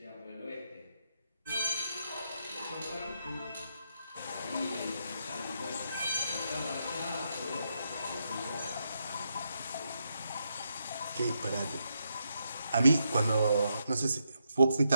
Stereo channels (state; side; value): inverted; both; correlation -0.81